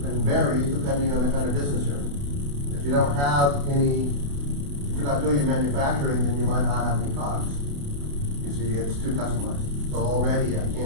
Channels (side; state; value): left; late; 28 ms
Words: varies depending on the kind of business you're in. If you don't have any, if you're not doing any manufacturing, then you might not have any COGS. You see, it's too customized. So already I